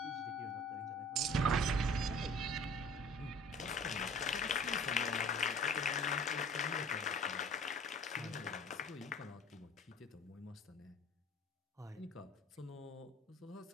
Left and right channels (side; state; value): both; normal; correlation 0.48